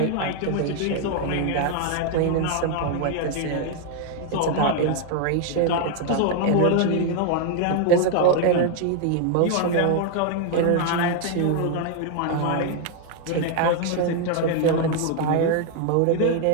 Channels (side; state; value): both; different; correlation 0.00